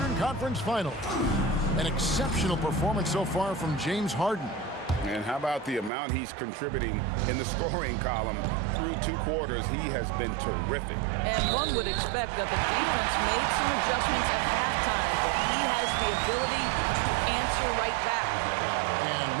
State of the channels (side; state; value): left; drops out; at 5.9 s